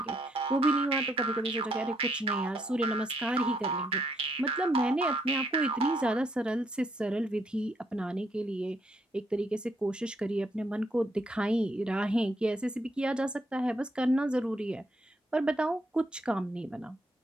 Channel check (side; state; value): both; normal; correlation 0.73